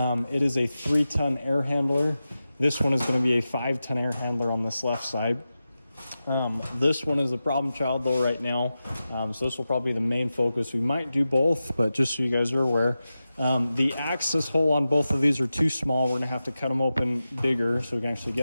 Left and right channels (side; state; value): both; inverted; correlation -0.93